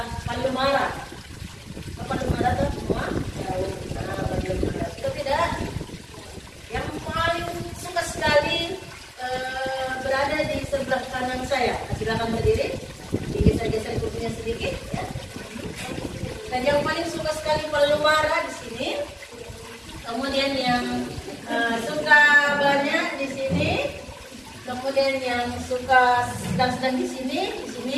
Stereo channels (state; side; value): identical; both; correlation 1.00